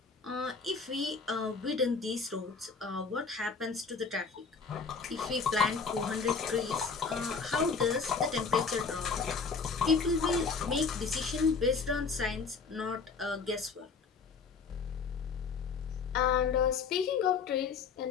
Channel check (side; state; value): right; quieter; 5.1 dB